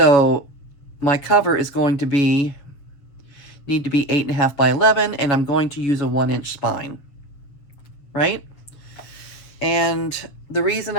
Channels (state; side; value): late; right; 7.3 ms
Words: my cover is going to need to be 8.5 by 11, and I'm going to use a 1-inch spine, right? And the reason